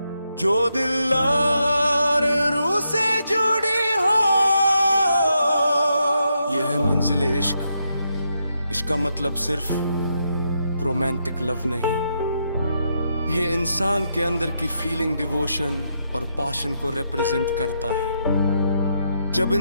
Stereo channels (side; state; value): both; inverted; correlation -0.81